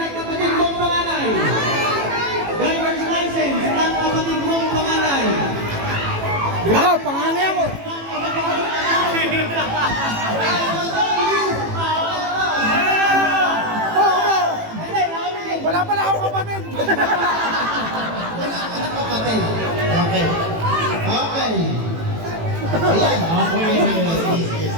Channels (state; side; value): late; left; 18 ms